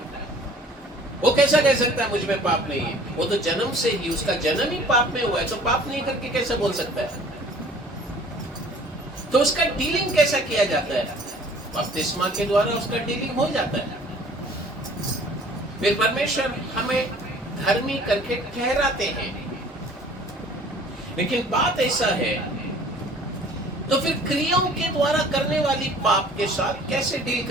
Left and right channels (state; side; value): normal; both; correlation 0.51